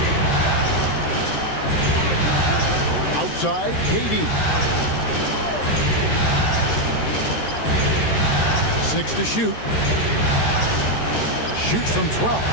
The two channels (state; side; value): late; right; 13 ms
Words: Outside, KD. 6 to shoot. Shoots from 12.